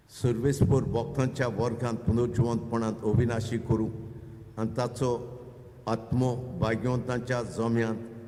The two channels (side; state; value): both; identical; correlation 1.00